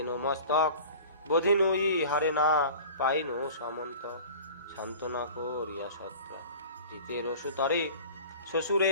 মস্তক বোধিনুই হারে না পাইনু সামন্ত সান্ত্বনা করিয়া সত্রা জিতের সুতারে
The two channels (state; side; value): inverted; both; correlation -0.41